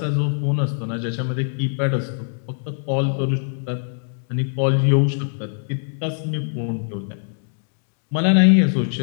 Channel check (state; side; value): silent; right; digital silence